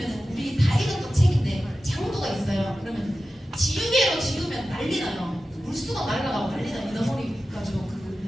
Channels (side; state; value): both; normal; correlation 0.93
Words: 우리 다 읽었던 책인데 장부가 있어요. 그러면 지우개로 지우면 난리 나요. 물수가 날아가고 난리 나요. 이너머리 가지고